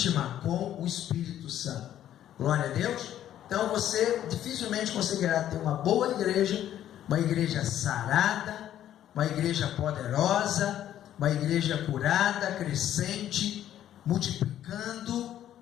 com o Espírito Santo. Glória a Deus. Então você dificilmente conseguirá ter uma boa igreja, uma igreja sarada, uma igreja poderosa, uma igreja curada, crescente, multiplicando,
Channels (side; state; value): right; quieter; 11.5 dB